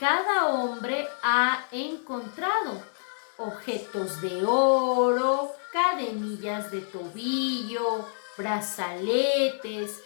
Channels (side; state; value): right; silent; digital silence